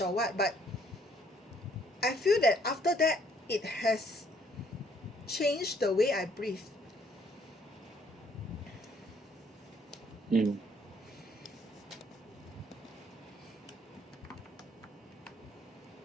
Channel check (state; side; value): normal; both; correlation 0.64